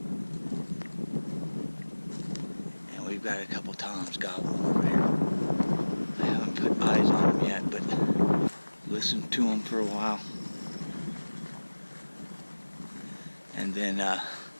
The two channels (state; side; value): inverted; both; correlation -1.00